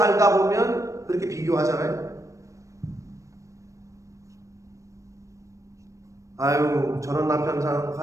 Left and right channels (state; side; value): late; left; 0.15 ms